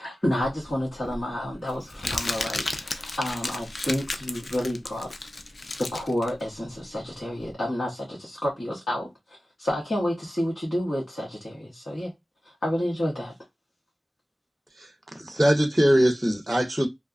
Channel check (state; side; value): normal; both; correlation 0.96